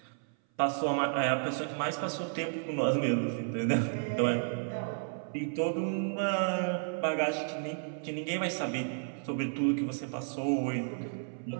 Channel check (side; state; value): left; silent; 56 dB below the other